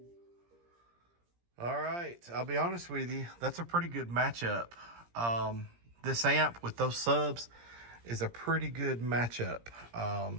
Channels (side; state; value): left; late; 17 ms